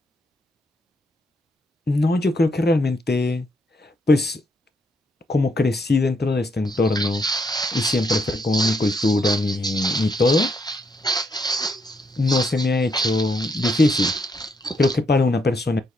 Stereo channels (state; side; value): normal; both; correlation 0.76